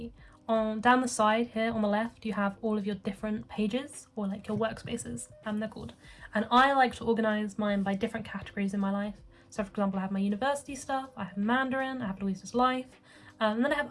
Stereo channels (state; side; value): identical; both; correlation 1.00